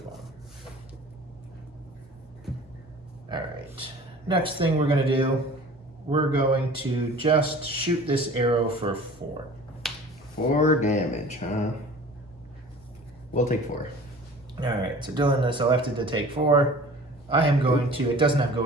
Alright. Next thing we're going to do, we're going to just shoot this arrow for 4. 4 damage, huh? We'll take 4. Alright, so Dylan is elected to take 4. I am going to, it doesn't have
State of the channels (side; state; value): both; normal; correlation 0.44